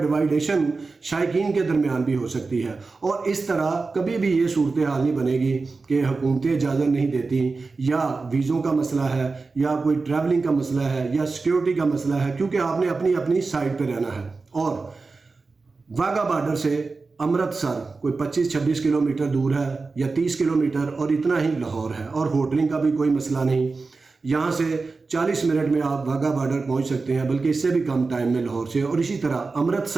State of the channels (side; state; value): left; quieter; 4.0 dB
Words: شائقین کے درمیان بھی ہو سکتی ہے. اور اس طرح کبھی بھی یہ صورتحال نہیں بنے گی کہ حکومتیں اجازت نہیں دیتی، یا ویزوں کا مسئلہ ہے، یا کوئی ٹریولنگ کا مسئلہ ہے، یا سیکیورٹی کا مسئلہ ہے، کیونکہ آپ نے اپنی سائڈ پہ رہنا ہے. اور واگا بارڈر سے امرتسر کوئی 25-26 کلومیٹر دور ہے یا 30 کلومیٹر، اور اتنا ہی لاہور ہے، اور ہوٹلنگ کا بھی کوئی مسئلہ نہیں. یہاں سے 40 منٹ میں آپ واگا بارڈر پہنچ سکتے ہیں، بلکہ اس سے بھی کم ٹائم میں لاہور سے. اور اسی طرح